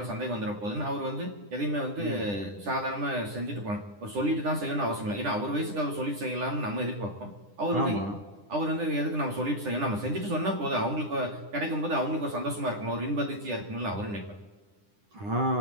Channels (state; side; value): late; left; 9.9 ms